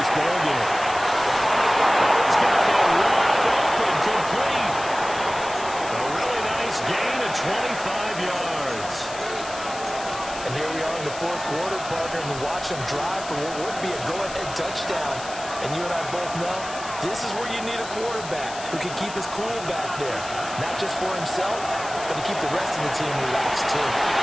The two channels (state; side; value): noise; left; hiss, 13 dB below the sound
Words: this ballgame. It's got to be wide open, complete. A really nice gain of 25 yards. And here we are in the fourth quarter, partner, and watch them drive for what would be a go-ahead touchdown. And you and I both know this is where you need a quarterback who can keep his cool back there. Not just for himself, but to keep the rest of the team relaxed, too.